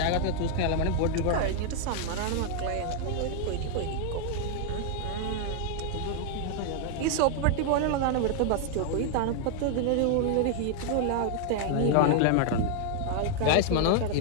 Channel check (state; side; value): different; both; correlation 0.00